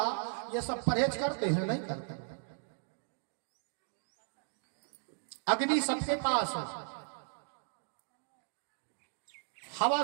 ये सब परहेज करते हैं? नहीं करते। अग्नि सबके पास है, हवा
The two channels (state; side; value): silent; left; 54 dB below the other